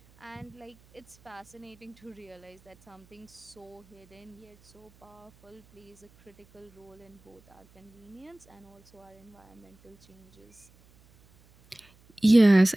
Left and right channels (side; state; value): right; noise; hum, 28 dB below the sound